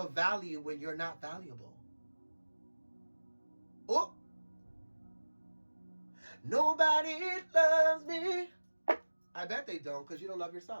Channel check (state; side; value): inverted; both; correlation -1.00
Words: value when you're not valuable. Oh, nobody loves me. I bet they don't, because you don't love